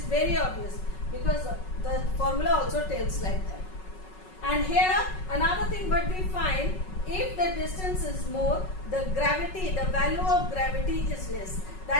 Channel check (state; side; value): late; right; 5.4 ms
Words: very obvious because the formula also tells like that. And here another thing what we find, if the distance is more, the value of gravity is less.